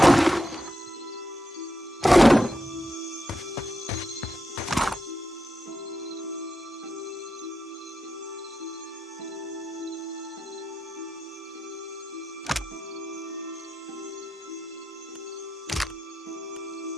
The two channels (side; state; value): both; normal; correlation 0.88